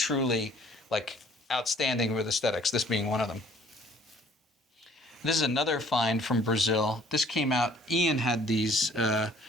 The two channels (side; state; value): both; normal; correlation 0.57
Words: like, outstanding with aesthetics, this being one of them. This is another find from Brazil. This came out, Ian had these, I